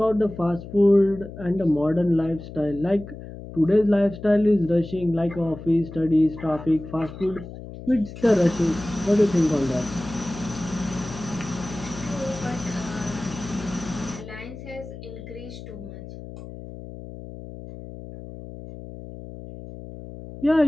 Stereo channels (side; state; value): left; noise; hum, 13 dB below the sound